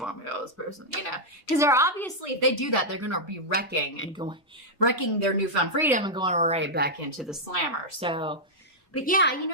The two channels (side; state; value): both; normal; correlation -0.05